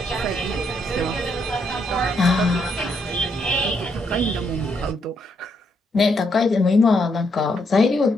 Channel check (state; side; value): normal; both; correlation 0.76